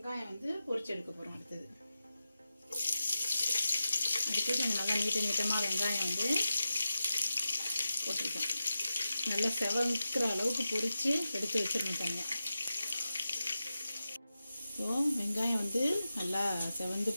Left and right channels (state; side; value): inverted; both; correlation -0.91